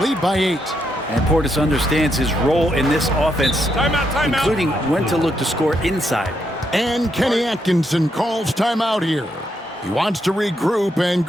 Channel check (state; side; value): normal; both; correlation 0.79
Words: by 8. And Portis understands his role in this offense, including when to look to score inside. And Kenny Atkinson calls timeout here. He wants to regroup and